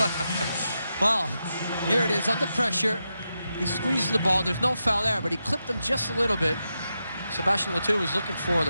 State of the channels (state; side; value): inverted; both; correlation -0.87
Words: well, here it is, under pressure. He squeezes the ball. There's no foul there, but he clipped him just a little bit. Sebastian Le was looking for